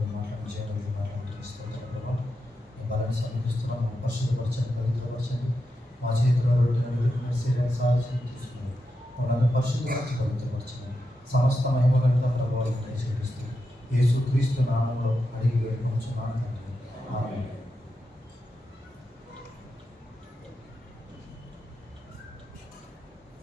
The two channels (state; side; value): normal; both; correlation 0.87